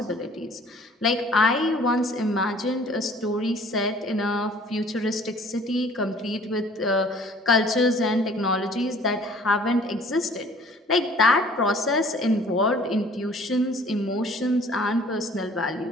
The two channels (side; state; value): both; normal; correlation 0.53